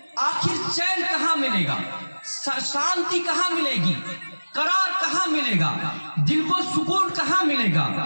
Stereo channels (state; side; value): inverted; both; correlation -1.00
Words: آخر چین کہاں ملے گا؟ شانتی کہاں ملے گی؟ قرار کہاں ملے گا؟ دل کو سکون کہاں ملے گا؟